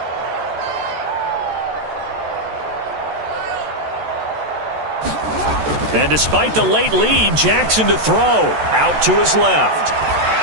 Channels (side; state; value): left; late; 14 ms